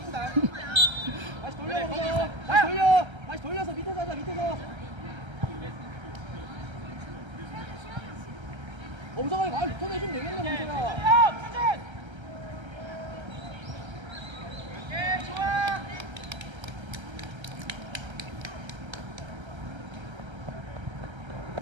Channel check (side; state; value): left; late; 1.3 ms